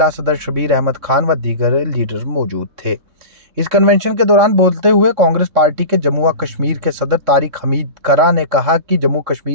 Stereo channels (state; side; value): late; left; 3.6 ms